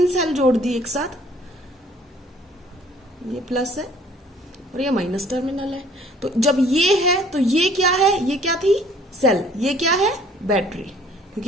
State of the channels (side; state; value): both; normal; correlation 0.56